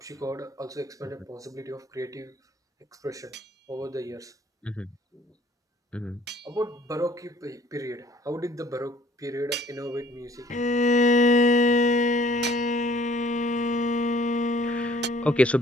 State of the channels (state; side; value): normal; both; correlation 0.56